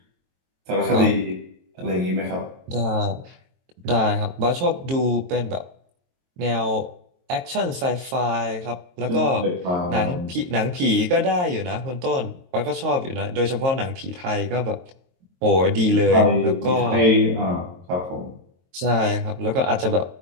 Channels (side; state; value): left; late; 22 ms